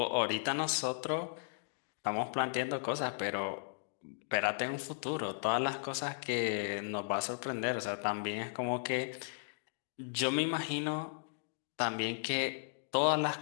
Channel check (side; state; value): right; silent; digital silence